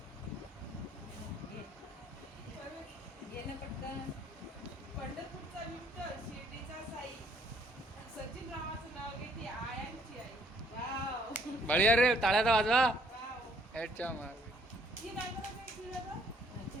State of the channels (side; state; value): both; normal; correlation 0.64